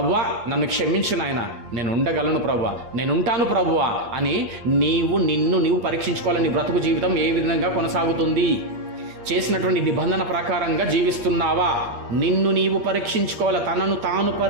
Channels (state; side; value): late; left; 8.5 ms